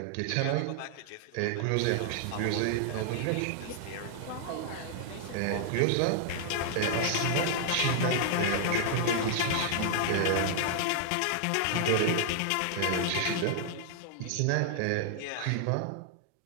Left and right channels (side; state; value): both; different; correlation 0.00